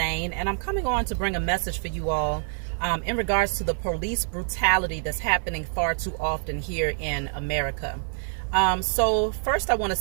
and I'm coming on to bring a message for you all in regards to the police brutality that's happening far too often here in America. So first I want to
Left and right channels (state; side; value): silent; left; digital silence